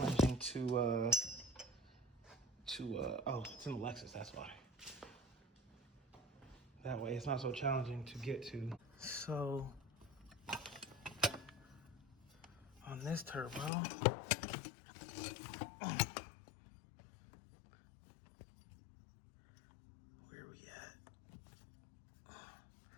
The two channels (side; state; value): right; drops out; at 13.7 s